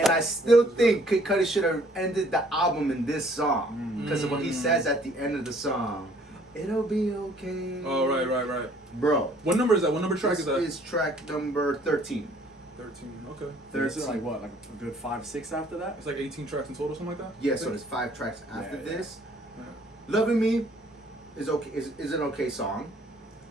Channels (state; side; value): normal; both; correlation 0.59